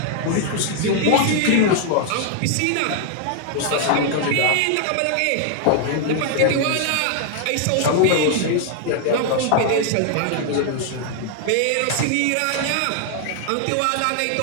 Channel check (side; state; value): both; different; correlation 0.00